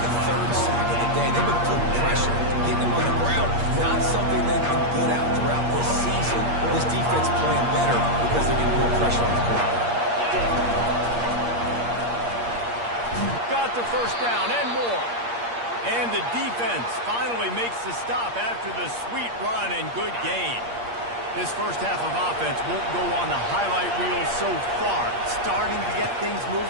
the 3rd sack of the day. They've been putting pressure, getting them on the ground. Not something they've been good at throughout this season. This defense playing better because they're getting more pressure on the quarterback. Got the first down and more. And the defense finally makes the stop after the sweet run and good gain. This first half of offense won't go on the highlight reel so far. Starting to get things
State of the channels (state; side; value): late; left; 8.5 ms